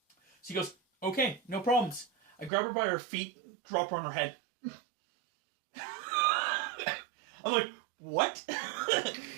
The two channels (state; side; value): drops out; left; at 2.5 s